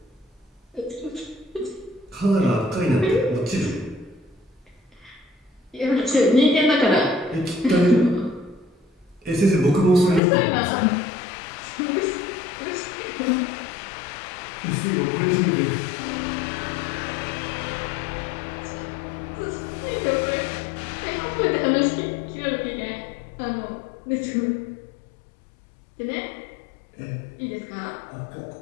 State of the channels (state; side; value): drops out; right; at 10.2 s